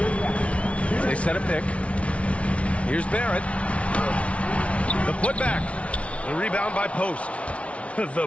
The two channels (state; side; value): late; right; 0.063 ms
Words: They set a pick. Here's Barrett. The putback. The rebound by Post. The